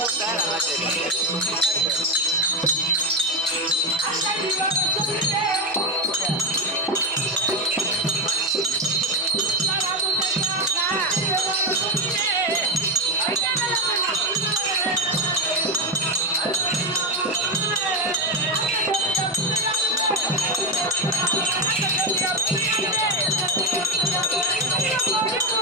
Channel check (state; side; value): noise; left; hum, 29 dB below the sound